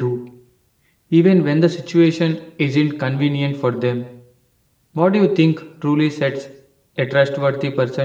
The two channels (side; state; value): both; identical; correlation 1.00